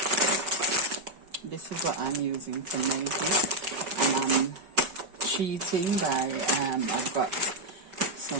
This is what I'm using to make it, and I'm cheating by I've got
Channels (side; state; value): left; late; 5.3 ms